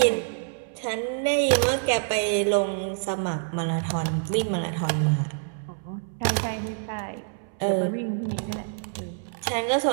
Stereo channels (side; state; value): left; silent; 61 dB below the other